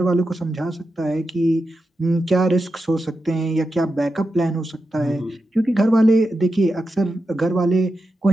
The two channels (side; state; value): both; normal; correlation 0.89